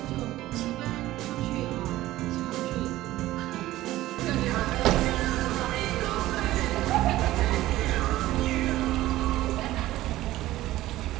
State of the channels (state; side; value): quieter; left; 15.9 dB